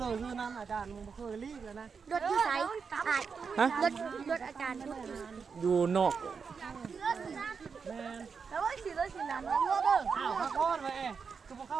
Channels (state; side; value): quieter; left; 5.7 dB